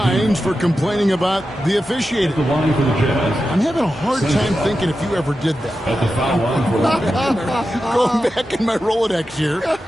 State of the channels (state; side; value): normal; both; correlation 0.91